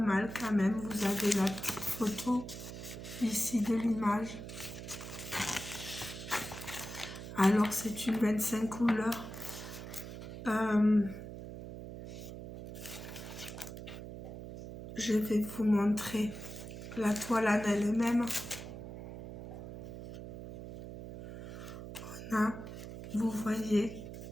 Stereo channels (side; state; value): right; noise; hum, 10 dB below the sound